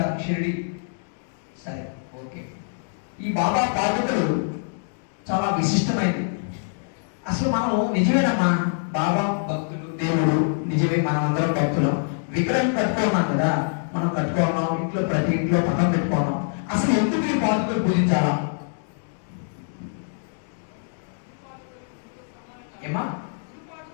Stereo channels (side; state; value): right; silent; digital silence